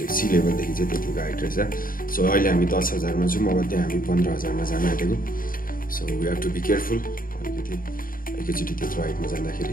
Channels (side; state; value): right; late; 0.41 ms